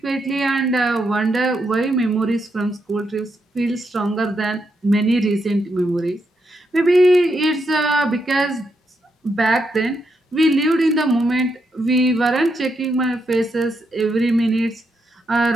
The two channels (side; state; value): both; normal; correlation 0.81